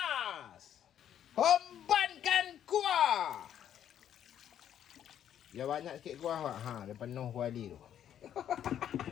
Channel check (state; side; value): quieter; right; 10.1 dB